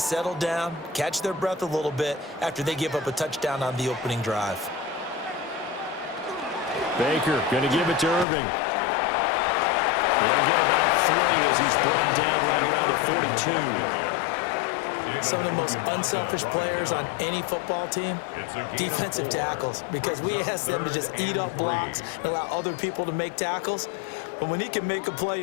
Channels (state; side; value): drops out; right; at 8.2 s